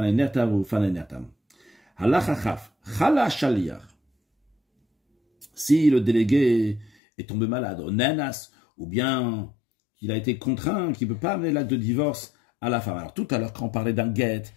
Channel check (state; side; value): drops out; right; at 6.9 s